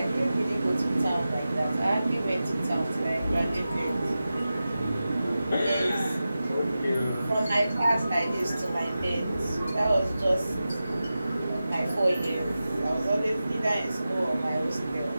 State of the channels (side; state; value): both; inverted; correlation -0.93